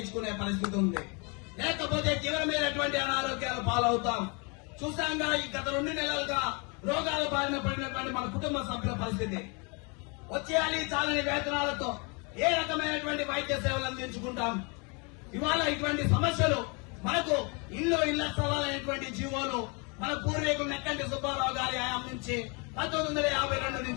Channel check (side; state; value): right; quieter; 32.4 dB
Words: పరిస్థితి ఉంది. లేకపోతే తీవ్రమైనటువంటి అనారోగ్యాలు పాలవుతాం. చూసాంగా ఈ గత 2 నెలలుగా రోగాల బారిన పడినటువంటి మన కుటుంబ సభ్యుల పరిస్థితి. వచ్చేయాలి చాలని వేతనాలతో ఏ రకమైనటువంటి వైద్య సేవలు అందించుకుంటాం? ఇవాళ ఇటువంటి సమస్యలు మనకు ఇళ్ల స్థలాలైనటువంటి జీవోలు మన పూర్వీకులు నెక్కంటి సుబ్బారావు గారి హయాం నుంచి 1952